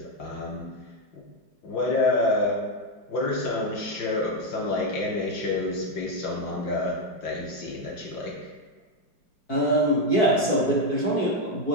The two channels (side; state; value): right; late; 4.6 ms